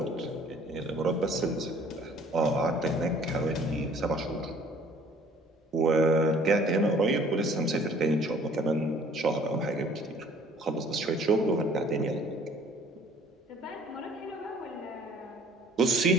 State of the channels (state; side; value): normal; both; correlation 0.55